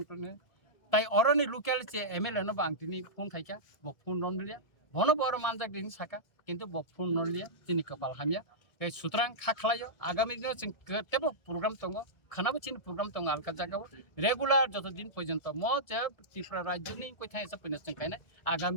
তাই অরনি লোকালিটি এমএলএ ন বাংতিনি ফোন খাইকা ব ফোন নলিয়া বন বড় মানজাক দিন সাকা কিন্তু ব ফোন নলিয়া তিনি কপাল হামিয়া এই সুতরাং খাখলাयो আগামী দিনে जों কেতেবো প্রোগ্রাম দङ খানাবো চিন প্রোগ্রাম দङ আলকা জায়গাও রেগুলার যতদিন পর্যন্ত ম যে ত্রিপুরা রাজ্যনি কইথাই এসে পইনা जों খাইনা আগামী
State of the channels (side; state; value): right; late; 1.7 ms